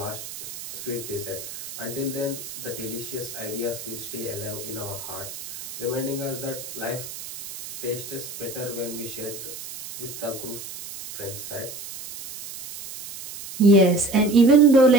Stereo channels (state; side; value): noise; right; hiss, 11 dB below the sound